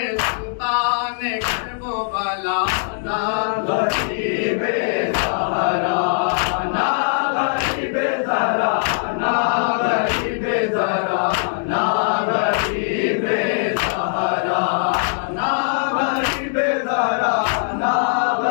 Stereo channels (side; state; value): right; silent; 64 dB below the other